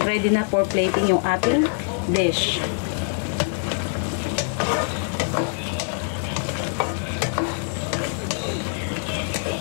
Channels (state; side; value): silent; right; digital silence